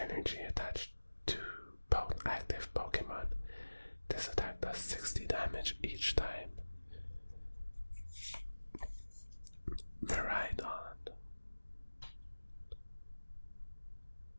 attached to both active Pokemon. This attack does 60 damage each time. Miraidon.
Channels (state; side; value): inverted; both; correlation -1.00